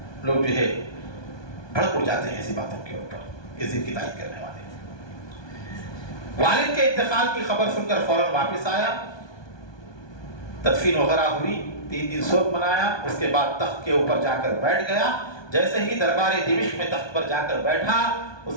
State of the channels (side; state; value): right; late; 1.2 ms